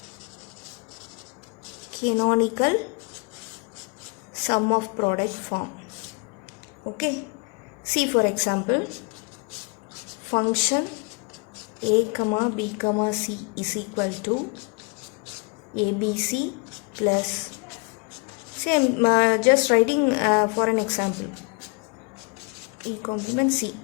canonical sum of product form. Okay, see, for example, function A comma B comma C is equal to ABC plus, see, I'm just writing for an example, E complement C.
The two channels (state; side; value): quieter; right; 31.8 dB